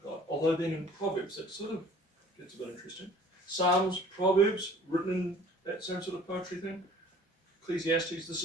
God. Although then in Proverbs, it sort of gets a bit interesting. Psalms, Proverbs, written in that same sort of poetry thing. Ecclesiastes, this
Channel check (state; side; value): normal; both; correlation 0.51